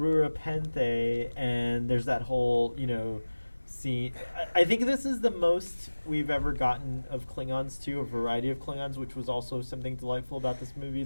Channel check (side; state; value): both; inverted; correlation -1.00